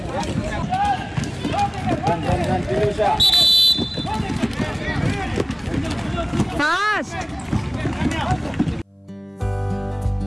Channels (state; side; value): identical; both; correlation 1.00